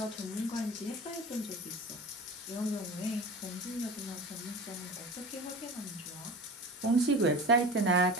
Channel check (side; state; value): both; normal; correlation 0.33